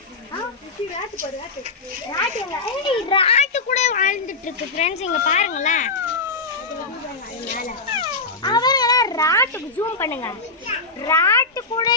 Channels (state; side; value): quieter; right; 3.6 dB